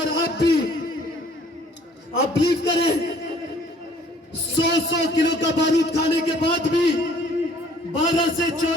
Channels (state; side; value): normal; both; correlation 0.57